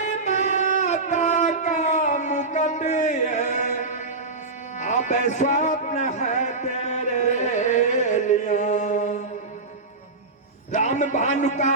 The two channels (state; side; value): quieter; left; 3.5 dB